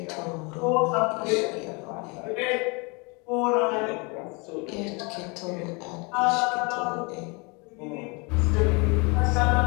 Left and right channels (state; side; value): quieter; right; 29.8 dB